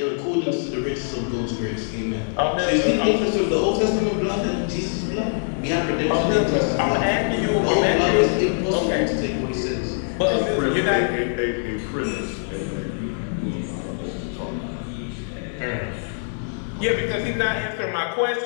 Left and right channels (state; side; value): silent; right; digital silence